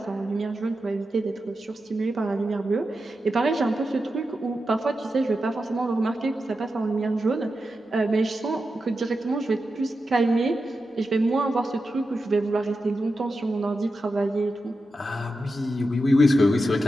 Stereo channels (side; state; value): both; normal; correlation 0.90